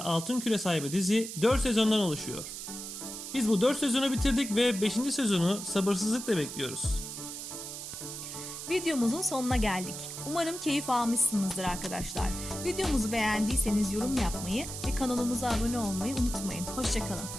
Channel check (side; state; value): right; noise; hiss, 8 dB below the sound